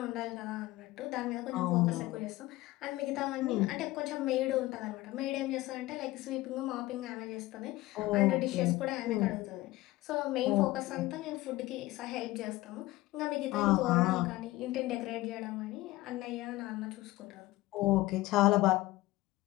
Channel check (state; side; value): quieter; right; 18.2 dB